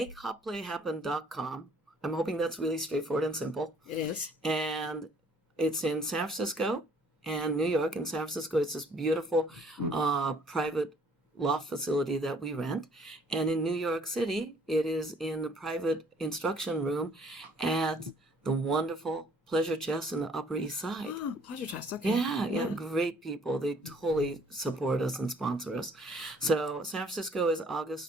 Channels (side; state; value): both; normal; correlation 0.60